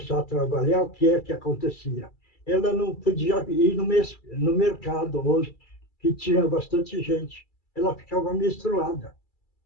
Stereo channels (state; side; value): late; right; 2.3 ms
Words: a trabalhar, o que é que acontecia? Ela não podia ir no mercado hoje, que tinha bastante gente. Ela ficava menstruada.